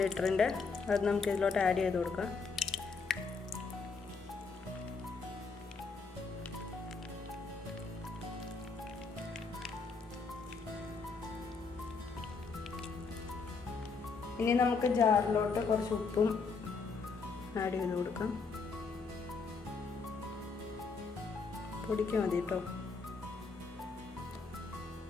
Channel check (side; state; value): right; quieter; 4.7 dB